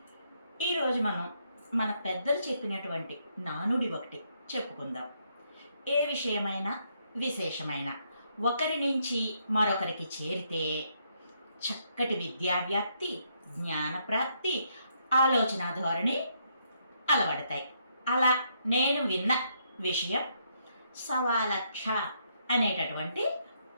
ఈరోజు మనం మన పెద్దలు చెప్పినటువంటి నానుడి ఒకటి చెప్పుకుందాం. ఏ విషయమైనా విశేషమైన ఒకరి నుంచి మరొకరికి చేరితే చక్కటి విద్యావ్యాప్తి, జ్ఞానప్రాప్తి, ఆలోచన ధోరణి అలవడతాయి. అలా నేను విన్న విషయం సవాలక్ష అనేటటువంటి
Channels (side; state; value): both; inverted; correlation -0.74